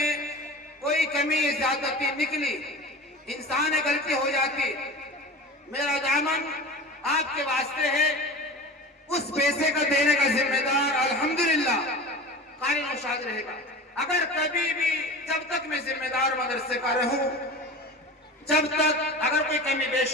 कोई कमी ज्यादती निकली, इंसान गलती हो जाती, मेरा दामन आपके वास्ते है। उस पैसे का देने का जिम्मेदार अल्हम्दुलिल्लाह कारी नौशाद रहेगा। अगर कभी भी, जब तक मैं जिम्मेदार मदरसे का रहूं, जब तक अगर कोई कमी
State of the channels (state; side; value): normal; both; correlation 0.33